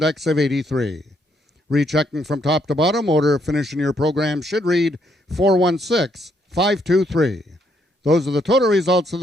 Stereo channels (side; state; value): both; normal; correlation 0.73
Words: of 83. Rechecking from top to bottom, order of finish in your program should read 416-523. Those are the total results of